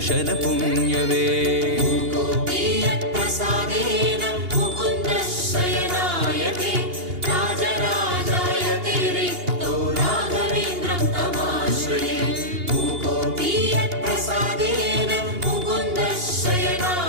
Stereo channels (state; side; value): late; left; 2.8 ms